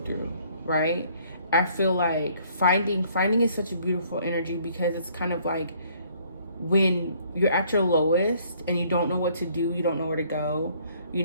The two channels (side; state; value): both; inverted; correlation -0.62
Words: right? I feel like finding is such a beautiful energy, because it's kind of like when you're at your lowest and you don't know what to do, you don't know where to go, you